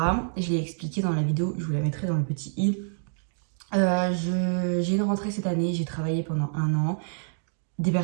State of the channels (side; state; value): left; silent; digital silence